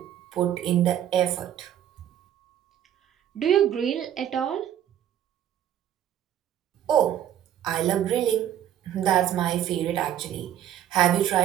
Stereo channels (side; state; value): left; quieter; 10.7 dB